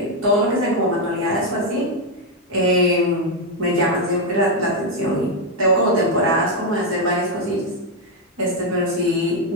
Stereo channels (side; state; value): both; normal; correlation 0.02